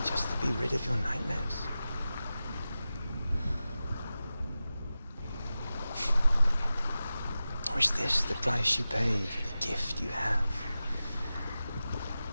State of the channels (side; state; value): both; inverted; correlation -0.95